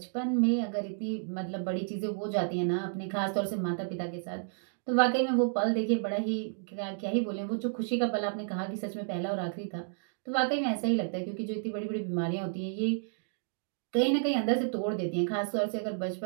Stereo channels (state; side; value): silent; left; digital silence